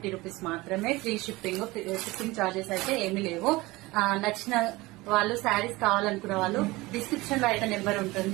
రూపీస్ మాత్రమే. ఫ్రీ షిప్పింగ్ చార్జెస్ అయితే ఏమీ లేవు. నచ్చిన వాళ్ళు శారీస్ కావాలనుకున్న వాళ్ళు డిస్క్రిప్షన్ లో అయితే నెంబర్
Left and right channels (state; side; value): quieter; left; 21.0 dB